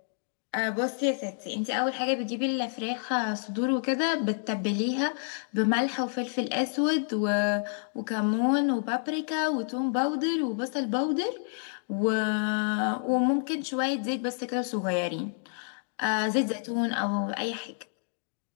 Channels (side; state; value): right; silent; digital silence